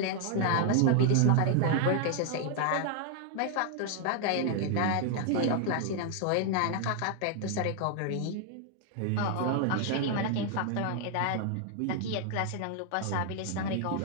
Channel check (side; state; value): both; different; correlation 0.00